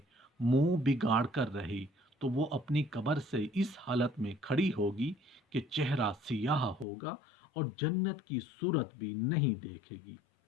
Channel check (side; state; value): right; drops out; at 6.9 s